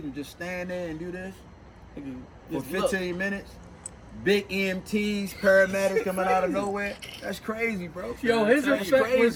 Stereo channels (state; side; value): identical; both; correlation 1.00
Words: and just stand there and do this for Just look. 15 minutes, big EMTs, paramedics coming out of nowhere. That's crazy, bro. Yo, his That's effect